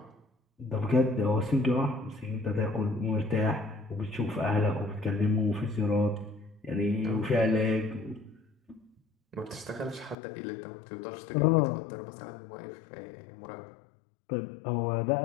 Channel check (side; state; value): right; drops out; at 10.2 s